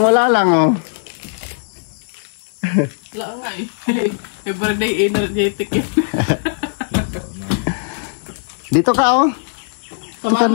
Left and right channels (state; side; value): silent; right; 62 dB below the other